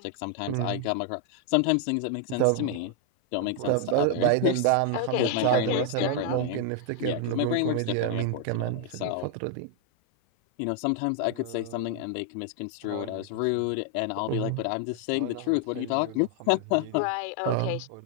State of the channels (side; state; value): both; different; correlation 0.00